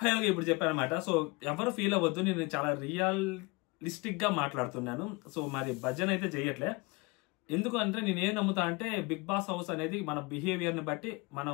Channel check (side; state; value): right; quieter; 26.2 dB